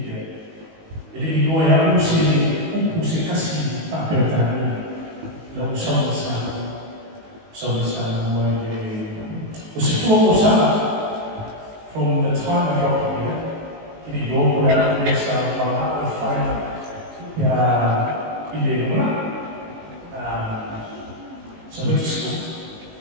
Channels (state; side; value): late; left; 19 ms